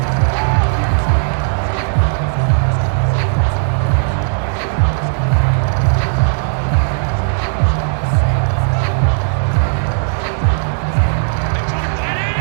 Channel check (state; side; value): silent; left; digital silence